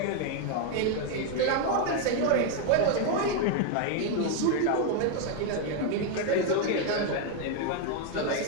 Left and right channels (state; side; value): different; both; correlation 0.01